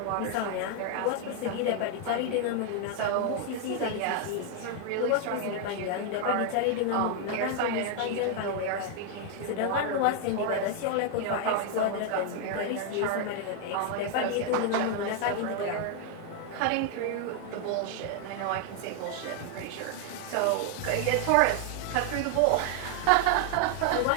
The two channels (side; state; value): both; different; correlation 0.00